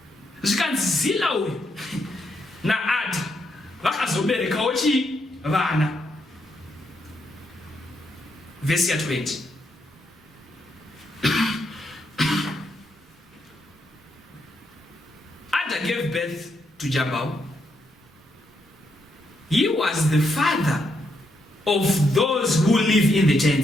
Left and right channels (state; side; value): normal; both; correlation 0.79